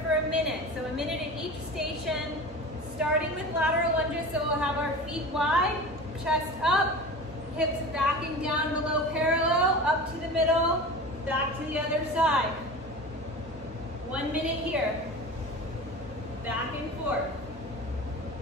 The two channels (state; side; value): normal; both; correlation 0.33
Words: for a minute. So a minute at each station, starting with lateral lunges. So we'll have our feet wide, chest up, hips backing down below parallel, up to the middle, back to the other side. 1 minute here. Back and forth.